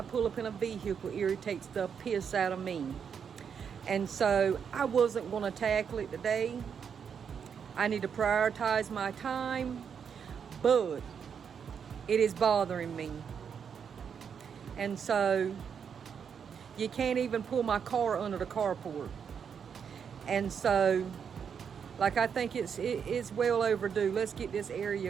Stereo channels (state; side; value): quieter; left; 7.1 dB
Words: pull up in a vehicle irritates the piss out of me. And so I wasn't going to tackle it today. I need to prioritize my time, but it is bothering me. And so you can't even pull my car under the carport. And so, I think it's well overdue. Let's get this